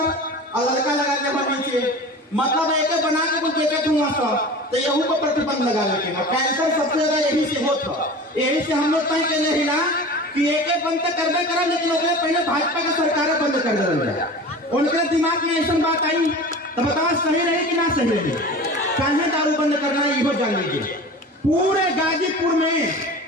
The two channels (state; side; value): normal; both; correlation 0.36